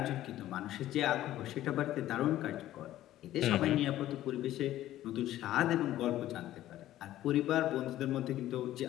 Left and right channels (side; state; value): right; quieter; 13.8 dB